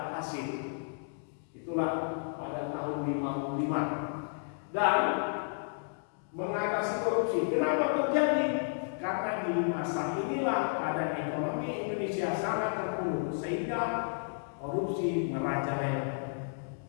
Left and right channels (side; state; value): right; silent; digital silence